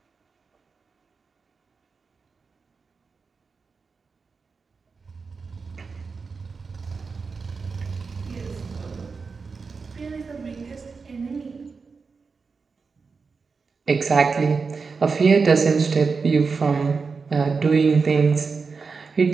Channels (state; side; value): quieter; left; 4.8 dB